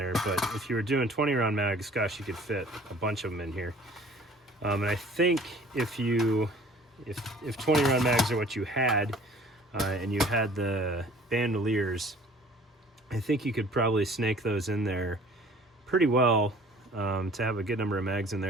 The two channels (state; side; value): normal; both; correlation 0.51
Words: but if you were doing 20-round mags, gosh, you could fit a bunch of them in here. And I think if 20-round mags are what you had, and you had the bandoliers, I think you could probably snake those in there pretty well, to have a good number of mags in